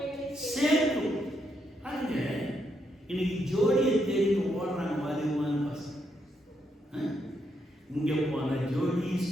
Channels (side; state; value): both; normal; correlation 0.79